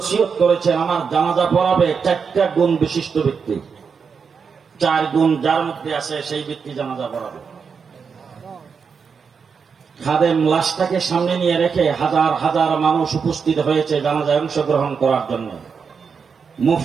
করেছেন, আমার জানাজা পড়াবে ৪টা গুণ বিশিষ্ট ব্যক্তি। ৪ গুণ যার মধ্যে আছে সেই ব্যক্তি জানাজা পড়াবে। খাদেম লাশটাকে সামনে নিয়ে রেখে হাজার হাজার মানুষ উপস্থিত হয়েছে জানাজায় অংশগ্রহণ করার জন্য।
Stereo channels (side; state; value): left; quieter; 5.9 dB